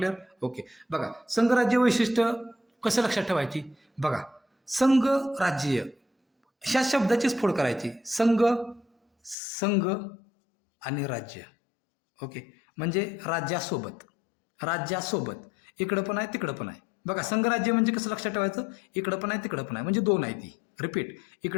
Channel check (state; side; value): drops out; right; at 9.3 s